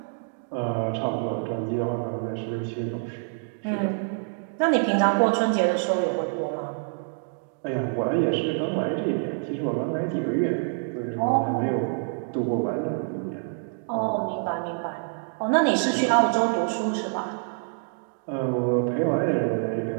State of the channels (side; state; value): left; silent; 61 dB below the other